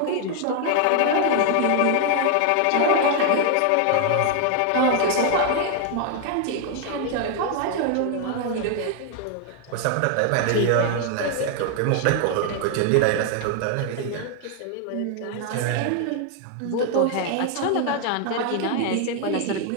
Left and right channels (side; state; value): both; different; correlation 0.00